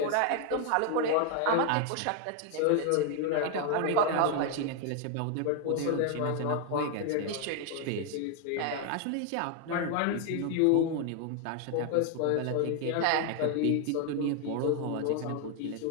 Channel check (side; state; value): both; different; correlation 0.00